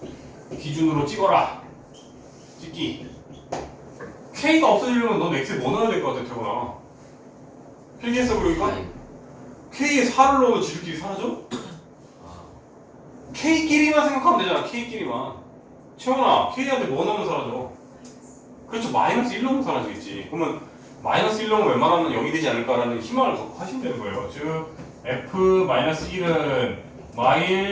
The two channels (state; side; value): identical; both; correlation 1.00